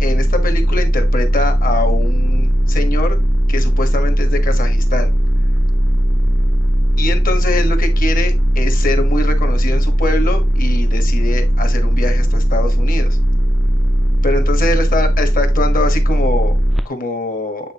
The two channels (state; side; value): normal; both; correlation 0.89